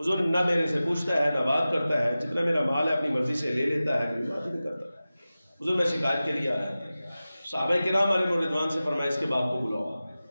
نہ میرے سے پوچھتا ہے نہ بات کرتا ہے، جتنا میرا مال ہے اپنی مرضی سے لے لیتا ہے، کوئی بات نہیں کرتا۔ حضور میں شکایت کے لیے آیا۔ صحابہ کرام علیہ رضوان سے فرمایا اس کے باپ کو بلاؤ،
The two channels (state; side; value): inverted; both; correlation -0.96